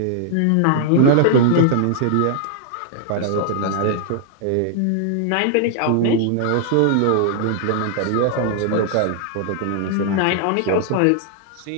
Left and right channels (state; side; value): different; both; correlation -0.01